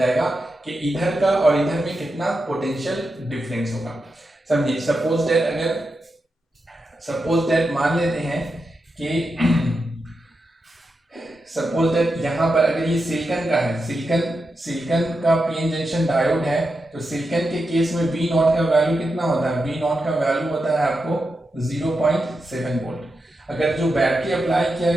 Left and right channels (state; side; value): normal; both; correlation 0.88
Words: कि इधर का और इधर में कितना पोटेंशियल डिफरेंस होगा। समझिए, सपोज दैट मान लेते हैं कि सपोज दैट यहाँ पर अगर ये सिलिकॉन का है, सिलिकॉन का पीएन जंक्शन डायोड है, तो सिलिकॉन के केस में V नॉट का वैल्यू कितना होता है, V नॉट का वैल्यू होता है आपको 0.7 वोल्ट। अगर जो बैटरी अप्लाई किया